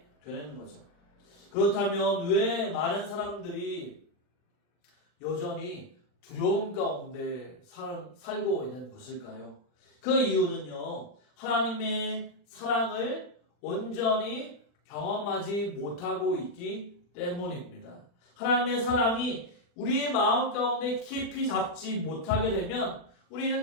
되는 거죠. 그렇다면 왜 많은 사람들이 여전히 두려움 가운데 살고 있는 것일까요? 그 이유는요, 하나님의 사랑을 온전히 경험하지 못하고 있기 때문입니다. 하나님의 사랑이 우리의 마음 가운데 깊이 잡지 못하게 되면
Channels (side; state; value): right; late; 40 ms